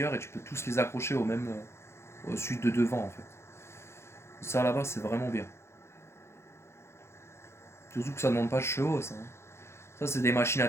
et tu peux tous les accrocher au même, au suite de devant en fait. Ça là-bas, c'est vraiment bien. Surtout que ça ne demande pas de chevaux, ça, hein. Ça, c'est des machines à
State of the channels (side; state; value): right; late; 0.13 ms